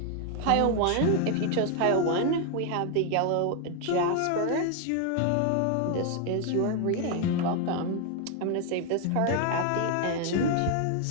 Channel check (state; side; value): different; both; correlation 0.01